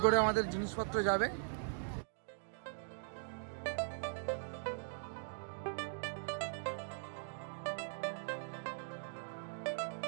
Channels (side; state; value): left; silent; digital silence